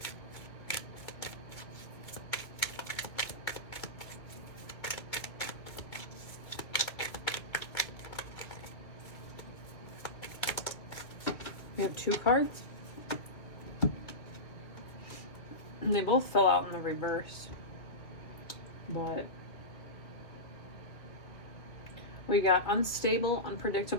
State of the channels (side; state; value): right; late; 2.0 ms